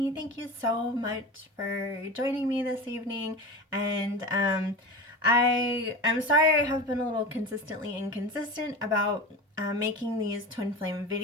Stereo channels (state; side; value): normal; both; correlation 0.29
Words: Thank you so much for joining me this evening. And I'm sorry I have been a little consistently inconsistent about making these twin flame